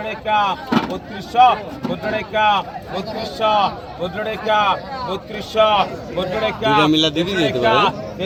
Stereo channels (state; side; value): identical; both; correlation 1.00